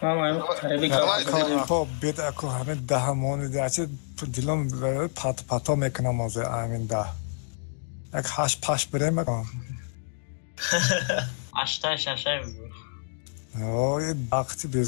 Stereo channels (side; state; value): right; silent; digital silence